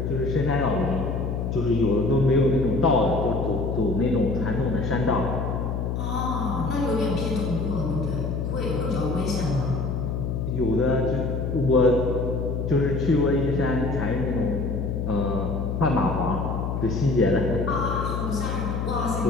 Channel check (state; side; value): noise; left; hum, 2 dB below the sound